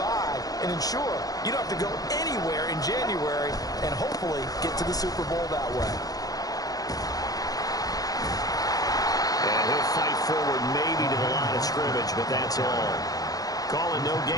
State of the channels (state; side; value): late; right; 0.18 ms